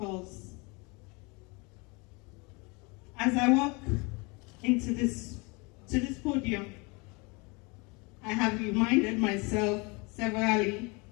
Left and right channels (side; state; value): right; quieter; 28.7 dB